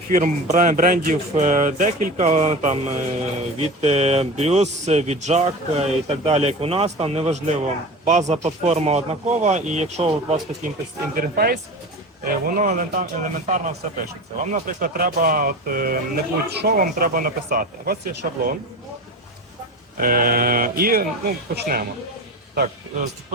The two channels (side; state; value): both; normal; correlation 0.30